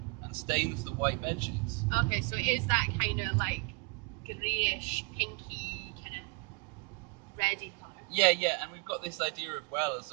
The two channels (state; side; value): quieter; left; 29.4 dB